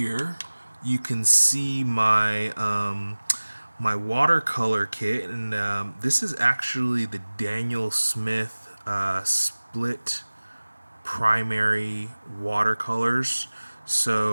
you can see my watercolor kit, and this is actually the Daniel Smith split primary watercolors.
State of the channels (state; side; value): inverted; both; correlation -1.00